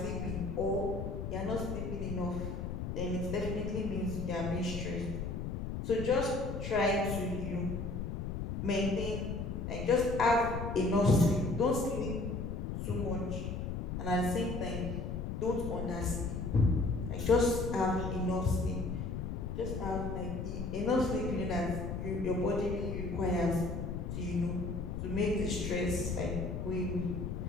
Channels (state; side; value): noise; left; rumble, 4 dB below the sound